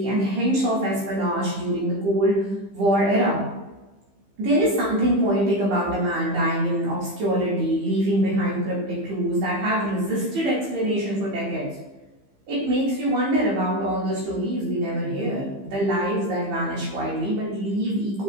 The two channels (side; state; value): left; late; 15 ms